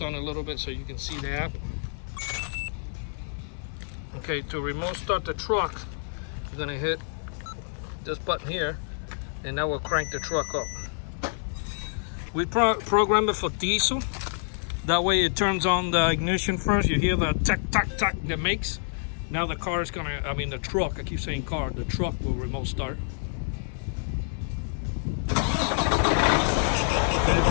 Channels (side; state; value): right; silent; digital silence